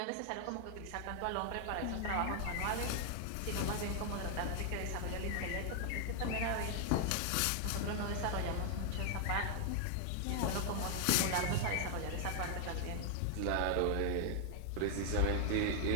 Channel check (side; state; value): both; different; correlation 0.00